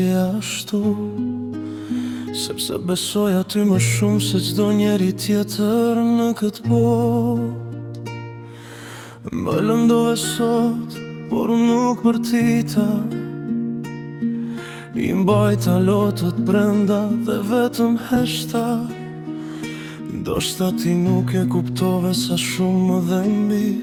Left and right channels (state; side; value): identical; both; correlation 1.00